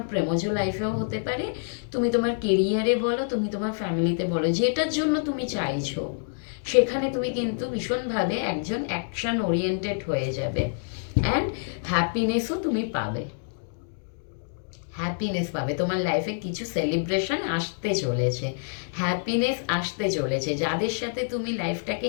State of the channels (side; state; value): right; silent; digital silence